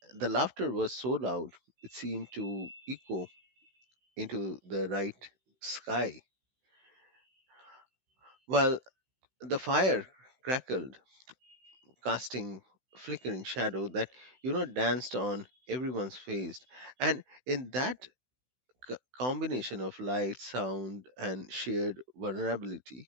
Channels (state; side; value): late; left; 16 ms